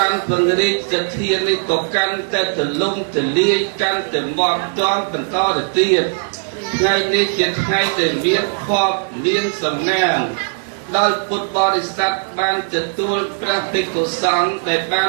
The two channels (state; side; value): silent; left; digital silence